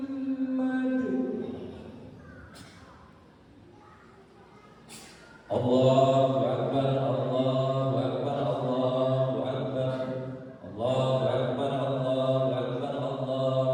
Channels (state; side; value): identical; both; correlation 1.00